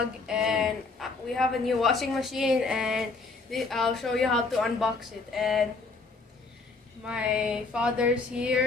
and we have a new washing machine, and I'll show you how to unbox it. And my father's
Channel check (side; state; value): right; quieter; 3.9 dB